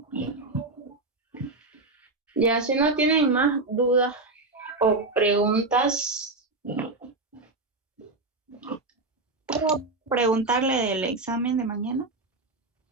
Ya, si no tienen más dudas o preguntas. ¿Puedo preguntarle del examen de mañana?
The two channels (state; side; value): quieter; left; 3.2 dB